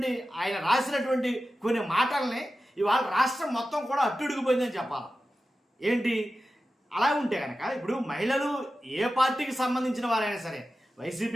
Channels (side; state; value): both; normal; correlation 0.93